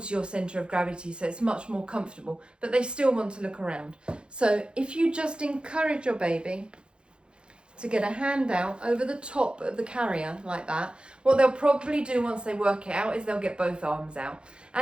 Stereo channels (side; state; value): left; late; 0.054 ms